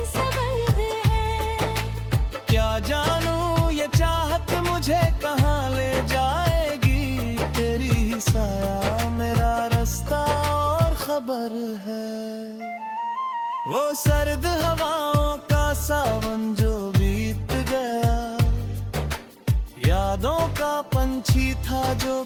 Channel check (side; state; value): both; identical; correlation 1.00